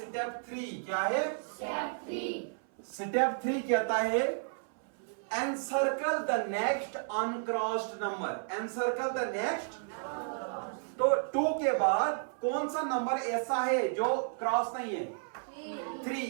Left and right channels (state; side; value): silent; left; 55 dB below the other